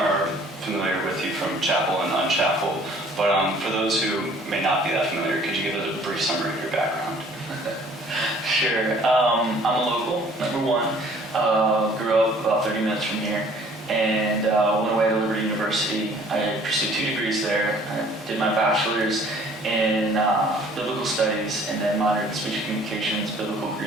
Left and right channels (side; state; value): both; normal; correlation 0.55